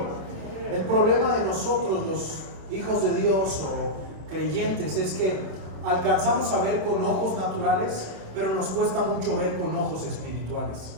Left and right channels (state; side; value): late; left; 27 ms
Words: El problema de nosotros, los hijos de Dios o creyentes, es que alcanzamos a ver con ojos naturales, pero nos cuesta mucho ver con ojos espirituales.